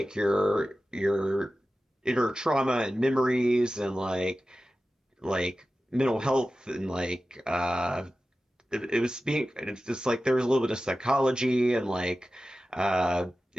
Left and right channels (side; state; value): both; normal; correlation 0.94